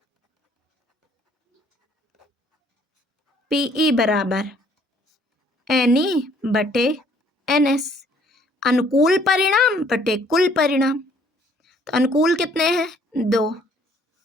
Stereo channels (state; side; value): normal; both; correlation 0.61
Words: PE बराबर NE बटे NS। अनुकूल परिणाम बटे कुल परिणाम। तो अनुकूल कितने हैं? 2।